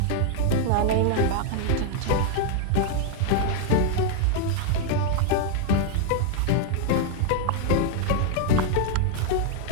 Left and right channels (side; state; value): both; different; correlation 0.00